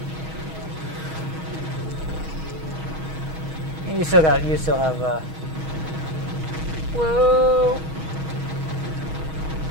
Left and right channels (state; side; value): late; left; 6.3 ms